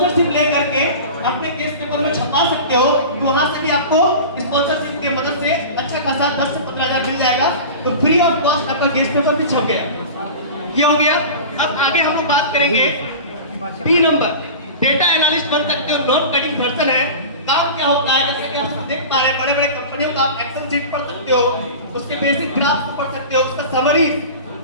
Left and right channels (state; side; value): inverted; both; correlation -0.33